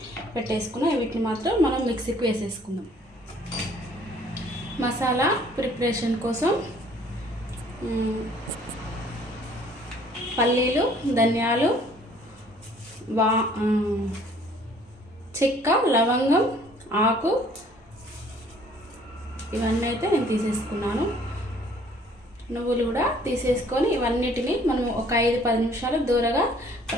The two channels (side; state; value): both; normal; correlation 0.57